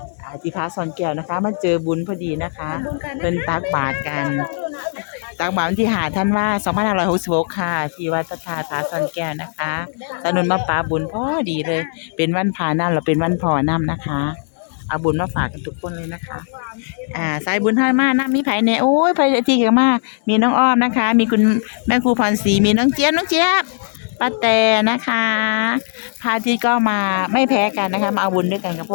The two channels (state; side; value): silent; right; digital silence